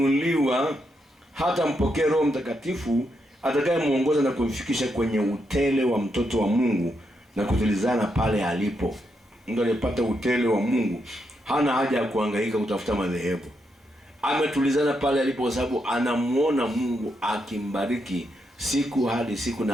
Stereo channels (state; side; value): normal; both; correlation 0.81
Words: hata mpokee Roho Mtakatifu atakayemuongoza na kumfikisha kwenye utele wa mtoto wa Mungu na kutilizana pale alipo. Mtu aliyepata utele wa Mungu hana haja ya kuhangaika kutafuta madhehebu. Ametulizana pale alipo kwa sababu anamuona Mungu akimbariki siku hadi siku,